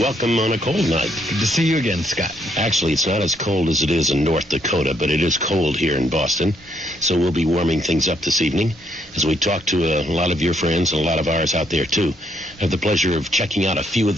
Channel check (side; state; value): both; normal; correlation 0.72